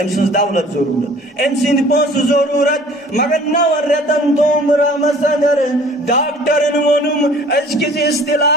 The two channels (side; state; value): both; normal; correlation 0.50